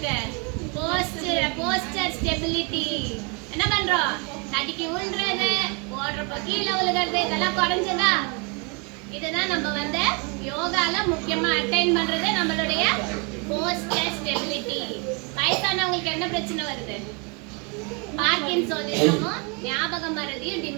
Poster stability. என்ன பண்றோம்? தடிக்கி விழுறது, ஓடுறப்ப கீழே விழுகிறது, இதெல்லாம் குறைஞ்சதா? இதுதான் நம்ம வந்து யோகால முக்கியமா அட்டைன் பண்றது நம்மளுடைய போஸ்டர் ஸ்டெபிலிட்டி. வயசானவங்களுக்கு என்ன பிரச்சனை வருது? பார்க்கின்சோனிசமும் ஞாபக மறதியும்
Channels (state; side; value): quieter; left; 33.1 dB